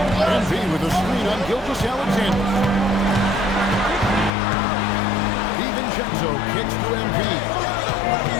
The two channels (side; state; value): right; drops out; at 4.3 s